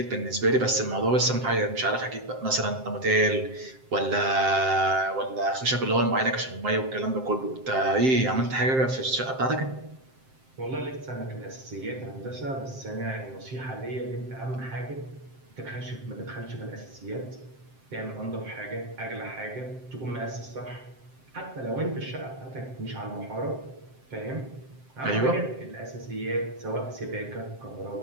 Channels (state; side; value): late; left; 7.7 ms